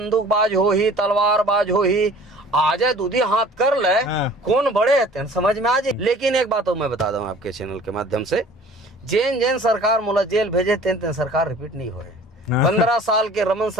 हो ही, तलवारबाज हो ही, आ जाए दूधी हाथ कर ले, कौन बड़े है समझ में आ जाए। लेकिन एक बात मैं बता दूं आपके चैनल के माध्यम से, जेन सरकार मोला जेल भेजे तेन सरकार रिपीट नहीं हो। 15 साल के रमन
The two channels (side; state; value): both; normal; correlation 0.48